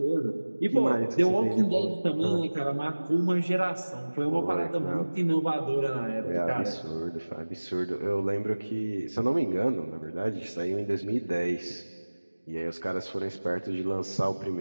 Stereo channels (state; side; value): inverted; both; correlation -1.00